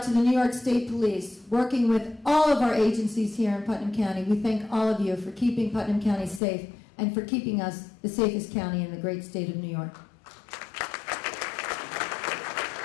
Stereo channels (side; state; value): right; drops out; at 6.4 s